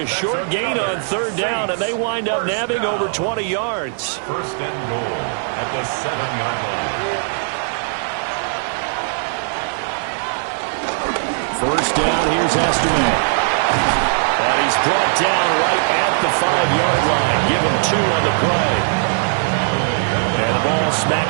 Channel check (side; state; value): left; silent; 56 dB below the other